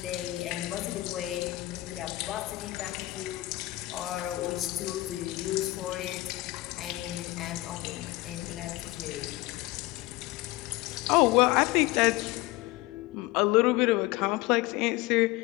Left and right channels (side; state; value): right; quieter; 19.0 dB